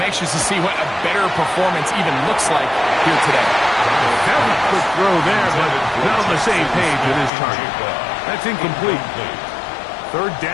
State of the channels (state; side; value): drops out; right; at 7.3 s